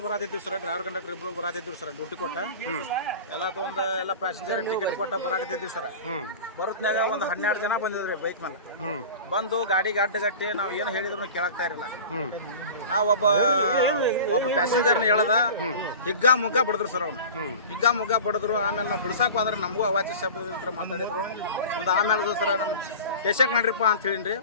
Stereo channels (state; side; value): inverted; both; correlation -0.36